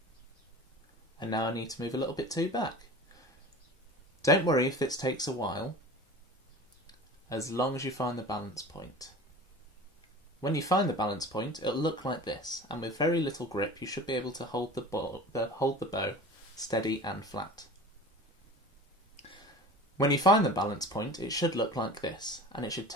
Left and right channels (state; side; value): normal; both; correlation 0.38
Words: And now I need to move a little bit too back. Don't worry if this takes a while, as long as you find the balance point. When you find the balance point, it'll look like this, and with very little grip you should be able to hold the bow steady and flat. When you find the balance point, it should look like this, and it should